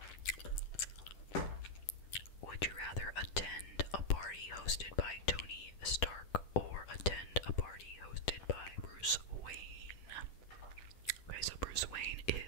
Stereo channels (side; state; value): right; late; 10 ms